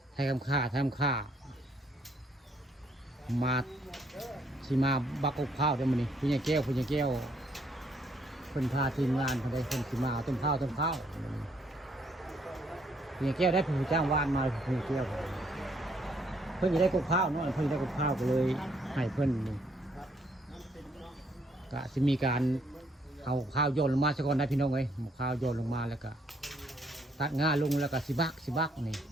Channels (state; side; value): normal; both; correlation 0.68